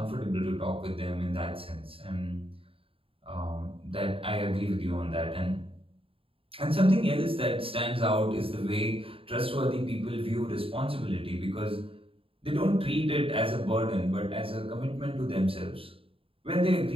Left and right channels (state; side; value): late; left; 0.27 ms